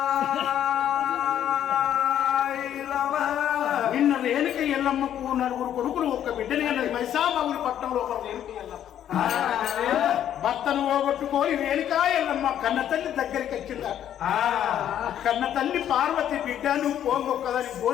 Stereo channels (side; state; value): right; quieter; 10.5 dB